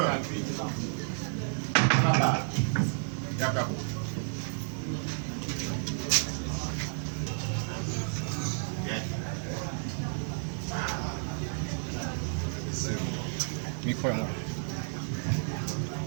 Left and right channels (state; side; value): silent; left; digital silence